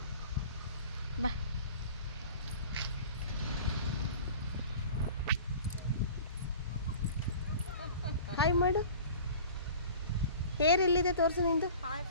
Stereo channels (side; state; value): both; inverted; correlation -0.42